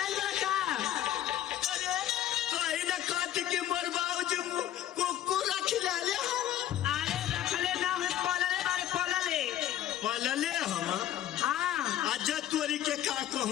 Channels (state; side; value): quieter; right; 12.1 dB